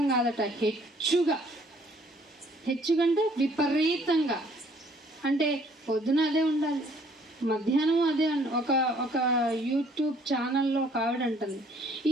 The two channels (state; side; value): normal; both; correlation 0.61